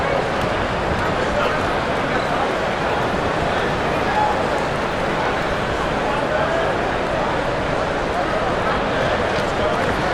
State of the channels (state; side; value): identical; both; correlation 1.00